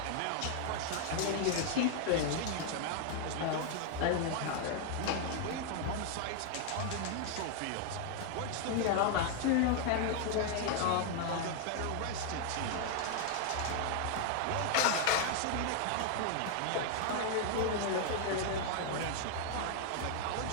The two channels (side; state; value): both; different; correlation 0.00